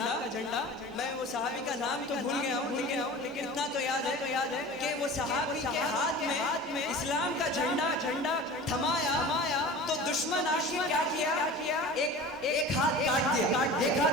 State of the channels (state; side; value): normal; both; correlation 0.37